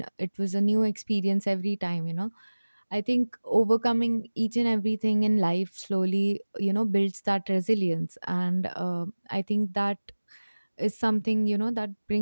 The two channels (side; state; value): both; inverted; correlation -1.00